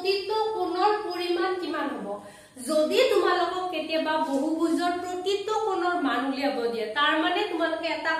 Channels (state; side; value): identical; both; correlation 1.00